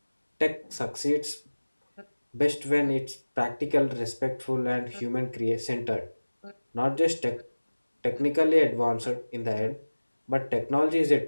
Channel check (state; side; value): inverted; both; correlation -1.00